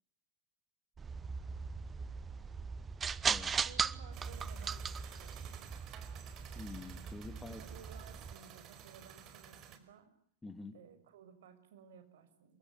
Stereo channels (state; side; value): quieter; left; 5.2 dB